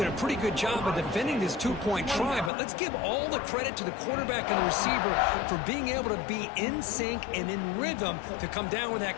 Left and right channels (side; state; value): right; drops out; at 2.5 s